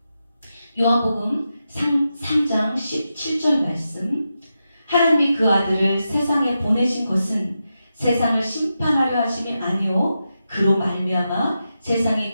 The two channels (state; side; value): inverted; both; correlation -0.88